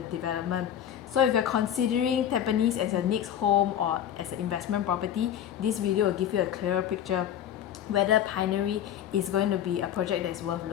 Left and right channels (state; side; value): quieter; right; 10.2 dB